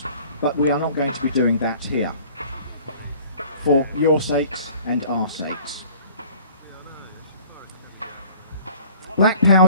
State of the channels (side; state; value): both; inverted; correlation -0.50